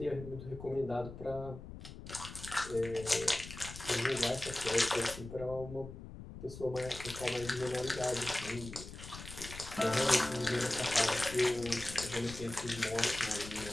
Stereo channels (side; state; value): left; noise; rumble, 12 dB below the sound